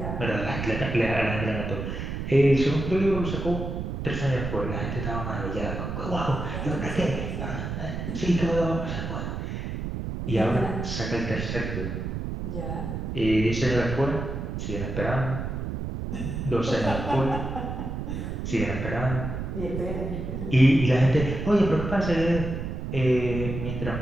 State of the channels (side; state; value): right; noise; rumble, 4 dB below the sound